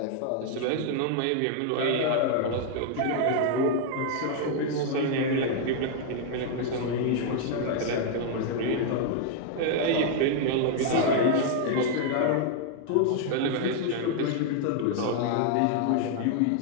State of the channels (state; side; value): different; both; correlation 0.00